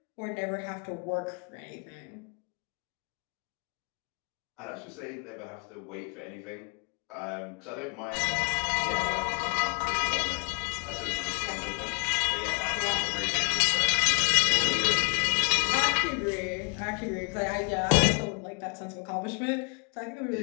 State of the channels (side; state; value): right; quieter; 32.7 dB